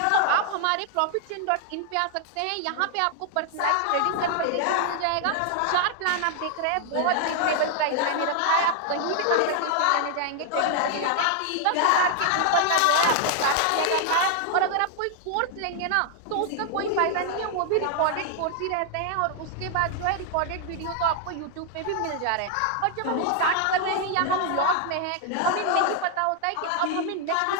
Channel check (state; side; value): different; both; correlation 0.00